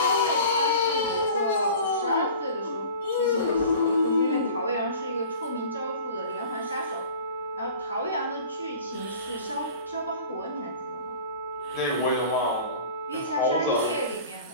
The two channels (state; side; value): inverted; both; correlation -0.42